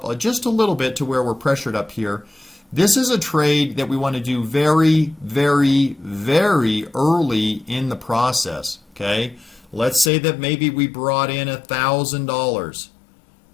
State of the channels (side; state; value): right; drops out; at 10.1 s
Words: just a little bit to where we're pressured up here. This is a trade that we want to do very, very, very early in the process. Okay, let's say that maybe we brought in $1,000